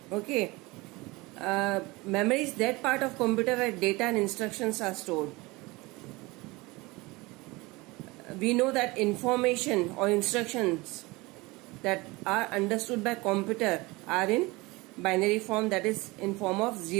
Okay. Memory is that part of computer where data and instructions are stored. We know that information or instructions that are understood by computer are in binary form, that is in form of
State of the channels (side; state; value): left; quieter; 23.0 dB